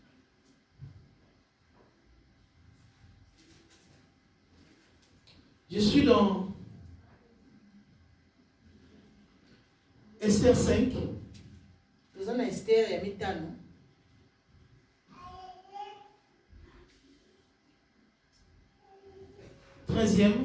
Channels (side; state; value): both; identical; correlation 1.00